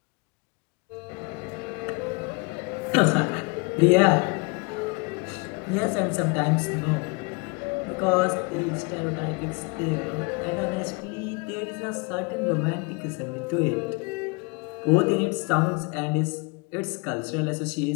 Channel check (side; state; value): right; quieter; 30.1 dB